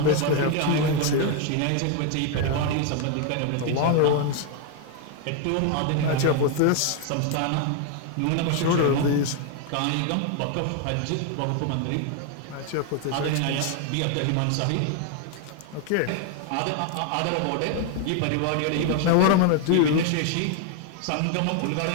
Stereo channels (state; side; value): different; both; correlation 0.01